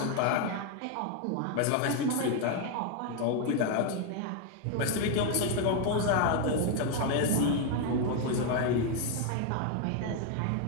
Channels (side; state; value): both; different; correlation 0.01